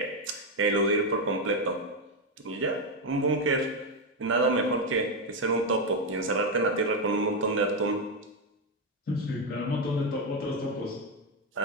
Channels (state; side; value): normal; both; correlation 0.06